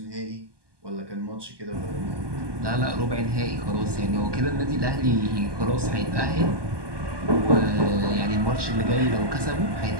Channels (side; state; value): left; late; 1.2 ms